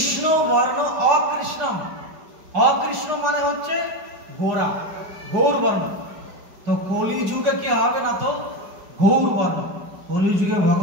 বর্ণ অকৃষ্ণম, অকৃষ্ণ মানে হচ্ছে গোরা, গৌর বর্ণ। তো কলি যুগে কি হবে না তো গৌর বর্ণ, কলি যুগে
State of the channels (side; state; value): left; late; 4.9 ms